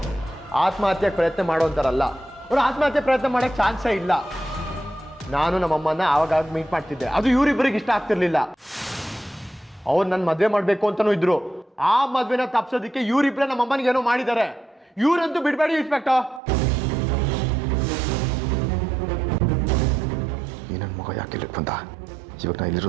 ಆತ್ಮಹತ್ಯೆಗೆ ಪ್ರಯತ್ನ ಮಾಡೋಂತಾರಲ್ಲ. ಅವ್ರು ಆತ್ಮಹತ್ಯೆ ಪ್ರಯತ್ನ ಮಾಡೋಕ್ಕೆ ಚಾನ್ಸೇ ಇಲ್ಲ. ನಾನು ನಮ್ಮಮ್ಮನ ಆವಾಗ ಮೀಟ್ ಮಾಡ್ತಿದ್ದೆ. ಅದು ಇವರಿಬ್ಬರಿಗೆ ಇಷ್ಟ ಆಗ್ತಿರ್ಲಿಲ್ಲ. ಅವ್ರು ನನ್ನ ಮದುವೆ ಮಾಡಬೇಕು ಅಂತಲೂ ಇದ್ರು. ಆ ಮದುವೆನ ತಪ್ಸೋದಕ್ಕೆ ಇವರಿಬ್ಬರೇ ನಮ್ಮಮ್ಮನಿಗೆ ಏನೋ ಮಾಡಿದ್ದಾರೆ. ಇವರಂತೂ ಬಿಡಬೇಡಿ ಇನ್ಸ್ಪೆಕ್ಟರ್. ಈ ನನ್ನ ಮಗ ಯಾಕೆ ಇಲ್ಲಿಗೆ ಬಂದ? ಇವಾಗ ನಾ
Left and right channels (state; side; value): drops out; left; at 16.4 s